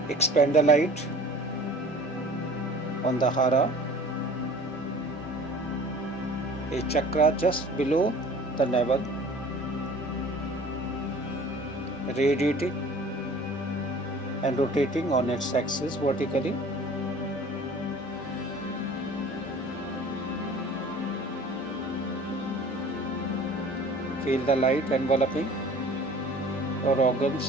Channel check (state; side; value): normal; both; correlation 0.46